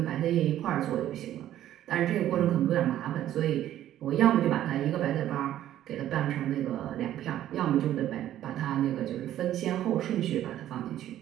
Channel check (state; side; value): quieter; left; 12.4 dB